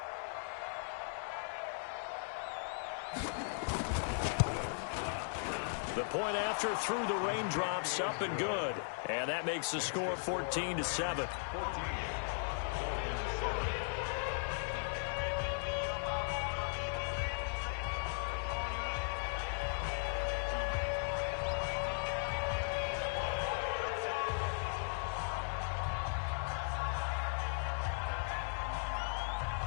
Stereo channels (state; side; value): silent; right; digital silence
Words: The point after through the raindrops, up and good. And that makes the score 14-7.